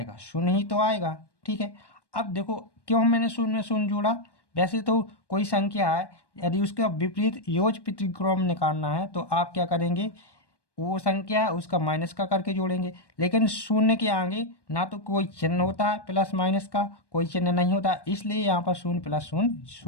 शून्य ही तो आएगा। ठीक है, अब देखो क्यों मैंने शून्य में शून्य जोड़ा। वैसे तो कोई संख्या है, यदि उसका विपरीत योज प्रतिक्रम निकालना है तो आप क्या करेंगे, वो संख्या है उसका माइनस का करके जोड़ेंगे। लेकिन शून्य के आगे ना तो कोई चिन्ह होता है प्लस माइनस का, कोई चिन्ह नहीं होता, इसलिए यहाँ पर शून्य प्लस शून्य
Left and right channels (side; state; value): right; late; 1.1 ms